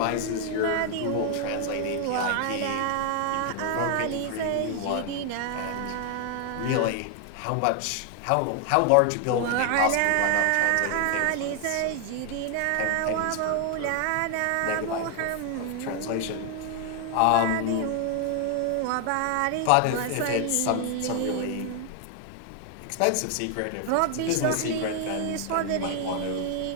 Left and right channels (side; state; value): both; different; correlation 0.00